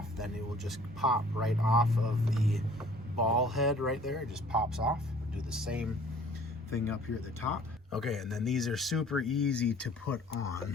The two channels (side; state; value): both; normal; correlation 0.53